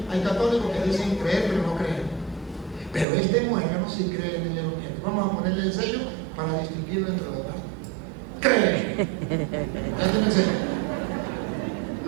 hay católicos que dicen creer pero no creen. Pero este muérgano sí cree en el Evangelio. Vamos a ponerle el sello para distinguirlo entre los demás. Cree. Ya tiene el sello.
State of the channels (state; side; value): drops out; left; at 3.1 s